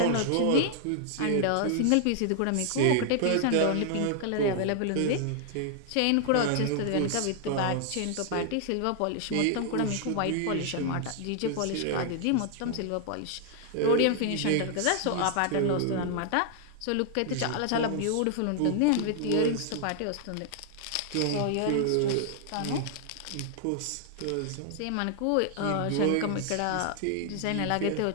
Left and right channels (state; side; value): different; both; correlation 0.00